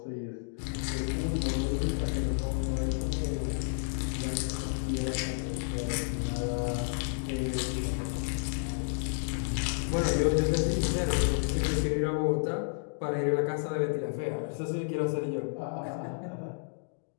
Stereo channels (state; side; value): silent; right; digital silence